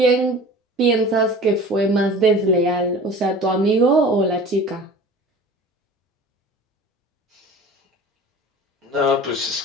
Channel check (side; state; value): both; normal; correlation 0.41